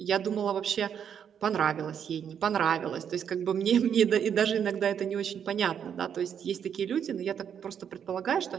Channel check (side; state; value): left; quieter; 8.2 dB